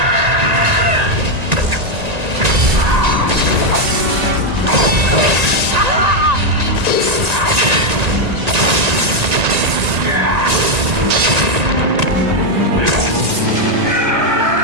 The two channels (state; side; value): late; left; 1.8 ms